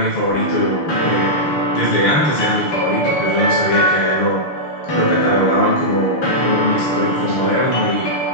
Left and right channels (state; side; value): late; right; 6.3 ms